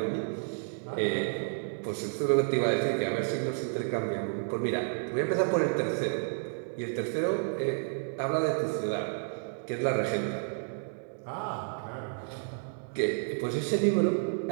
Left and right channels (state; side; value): silent; left; digital silence